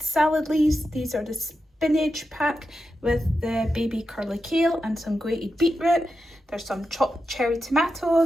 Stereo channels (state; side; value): normal; both; correlation 0.89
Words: salad leaves. These are the spinach pack with the baby curly kale and some grated beetroot. There's some chopped cherry